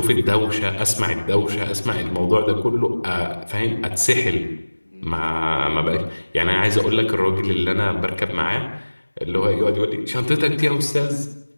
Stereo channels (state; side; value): inverted; both; correlation -1.00